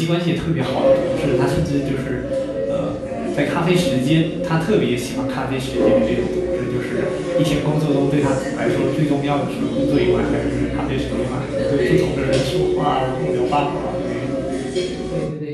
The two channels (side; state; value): both; identical; correlation 1.00